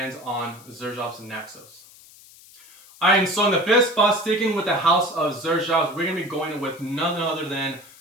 on XerJoff's Naxos. Alright, and so in the 5th spot, sticking with the house of XerJoff, we're going to be going with none other than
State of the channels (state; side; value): noise; left; hiss, 23 dB below the sound